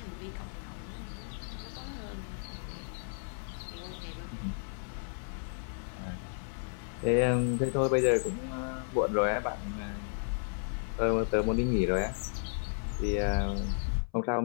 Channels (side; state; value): right; silent; 56 dB below the other